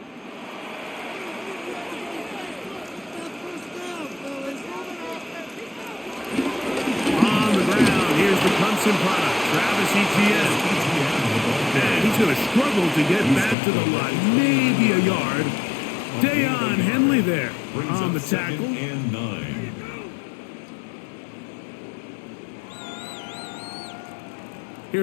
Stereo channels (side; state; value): right; drops out; at 13.6 s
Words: On the ground, here's the Clemson product, Travis Etienne. And he's going to struggle to get back to the line, maybe a yard. Dayon Henley there on the tackle. And 9.